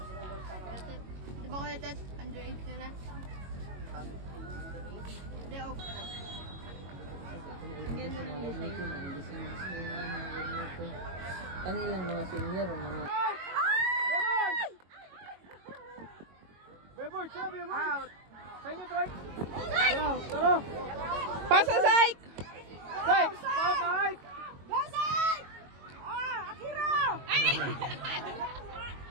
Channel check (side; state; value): left; late; 22 ms